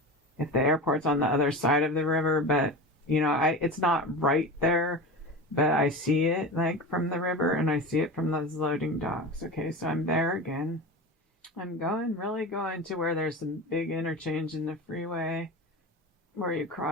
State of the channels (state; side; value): normal; both; correlation 0.27